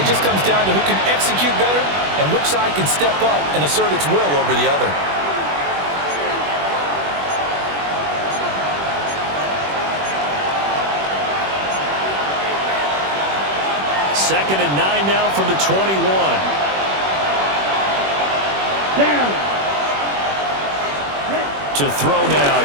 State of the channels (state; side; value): late; left; 21 ms